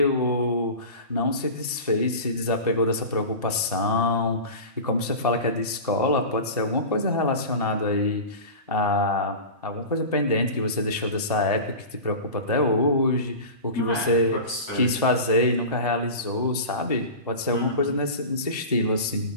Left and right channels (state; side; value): inverted; both; correlation -0.31